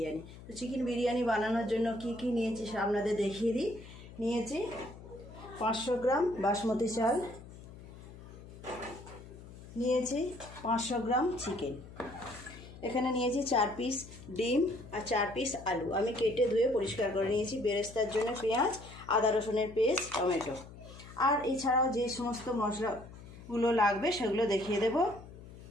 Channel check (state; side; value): noise; left; hum, 16 dB below the sound